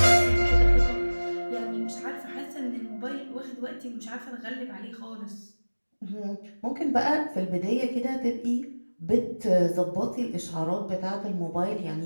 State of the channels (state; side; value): inverted; both; correlation -1.00